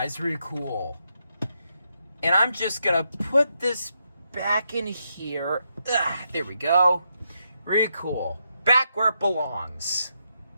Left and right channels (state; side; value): inverted; both; correlation -0.81